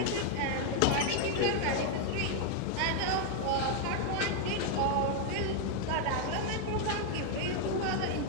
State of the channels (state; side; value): different; both; correlation 0.00